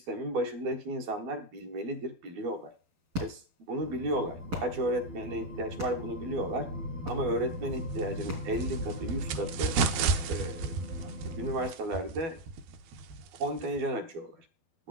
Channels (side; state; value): left; late; 12 ms